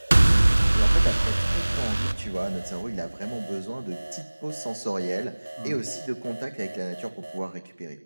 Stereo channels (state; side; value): inverted; both; correlation -1.00